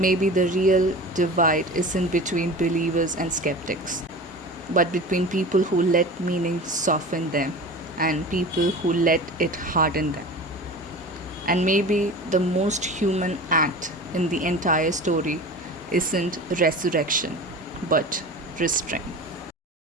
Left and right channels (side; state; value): both; normal; correlation 0.35